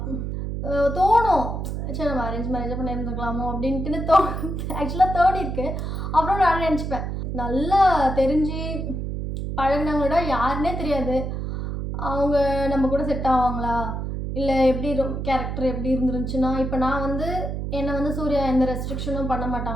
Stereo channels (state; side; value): noise; right; hum, 4 dB below the sound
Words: தோணும், சரி நம்ம அரேஞ்ச் மேரேஜாக பண்ணியிருந்துக்கலாமோ அப்படின்ட்டுன்னு ஆக்சுவலாக தோணிருக்கு. அப்புறம் நான் நினச்சிப்பேன், நல்லா தெரிஞ்சு பழகினவங்களோட யாருன்னே தெரியாது, அவங்க நம்ம கூட செட் ஆவாங்களா, இல்லை எப்படி கேரக்டர் எப்படி இருந்துருந்துச்சுன்னா, இப்போ நான் வந்து என்னை வந்து சூர்யா எந்த ரெஸ்ட்ரிக்ஷனும் பண்ண